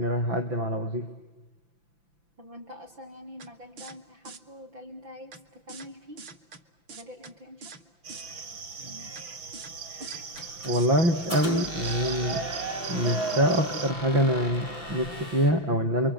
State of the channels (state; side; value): late; left; 5.9 ms